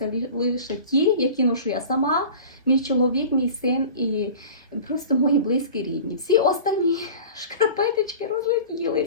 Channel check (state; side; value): inverted; both; correlation -0.39